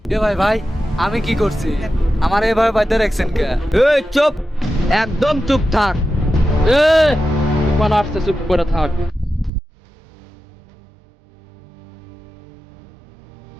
এ ভাই ভাই, আমি কি করছি? আমার এভাবে বাইতে রাখছেন কে? এই চুপ, একদম চুপ থাক। এ তুফান আসছে, চুপ করে থাক।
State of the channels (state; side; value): drops out; left; at 9.5 s